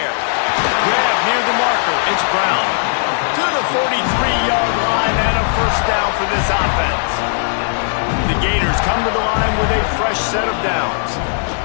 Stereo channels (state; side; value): silent; right; digital silence